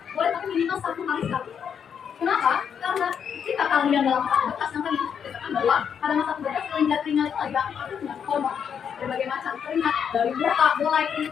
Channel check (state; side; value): quieter; right; 7.6 dB